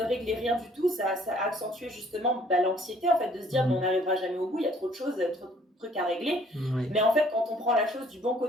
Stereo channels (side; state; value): both; normal; correlation 0.59